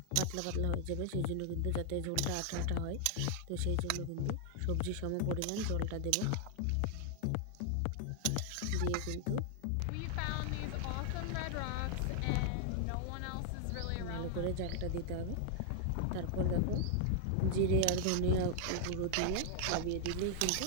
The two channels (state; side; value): different; both; correlation 0.00